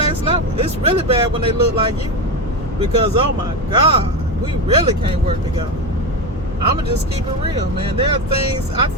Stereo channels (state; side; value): normal; both; correlation 0.17